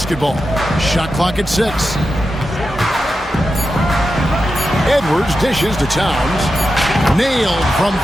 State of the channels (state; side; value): normal; both; correlation 0.90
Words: Shot clock at 6. Edwards dishes to Towns. Nailed from